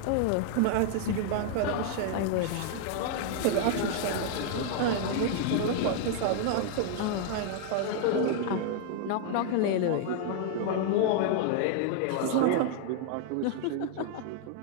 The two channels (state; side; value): different; both; correlation 0.00